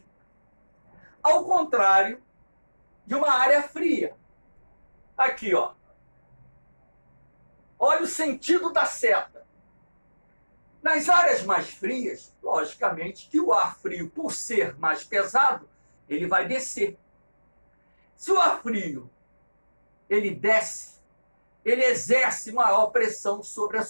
Ao contrário de uma área fria. Aqui, ó. Olha o sentido da seta. Nas áreas mais frias, logicamente que o ar frio, por ser mais pesado, ele vai descer. Se o ar frio ele desce, ele exerce maior pressão sobre a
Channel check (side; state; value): both; inverted; correlation -1.00